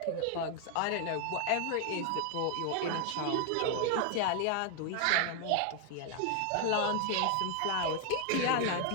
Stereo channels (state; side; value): different; both; correlation 0.01